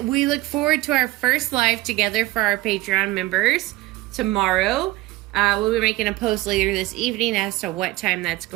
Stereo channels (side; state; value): left; quieter; 18.6 dB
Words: we look forward to our first live together for our Patreon members tomorrow. We'll be making a post later this evening as to what time that's